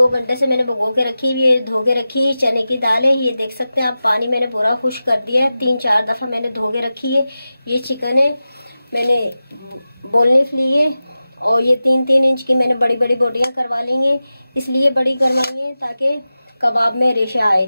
घंटे से मैंने भिगो के रखी हुई है, धो के रखी चने की दाल है। ये देख सकते हैं आप, पानी मैंने पूरा खुश कर दिया है, 3-4 दफ़ा मैंने धो के रखी है। ये चिकन है, मैंने बोनलेस ली है और ये 3-3 इंच की मैंने बड़ी बड़ी बोटियाँ करवा ली हैं। इसलिए बड़ी करवाई हैं ताकि कबाब में रेशा आए।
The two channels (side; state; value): both; inverted; correlation -0.94